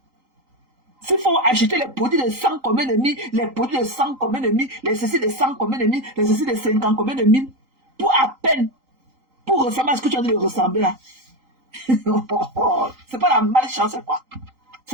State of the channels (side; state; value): left; late; 3.8 ms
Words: S'il faut acheter les produits de 100 combien de mille, les produits de 100 combien de mille, les ceci de 100 combien de mille, les ceci de 50 combien de mille, pour à peine, pour ressembler à ce que tu as dit de ressembler là. C'est pas la malchance, c'est quoi?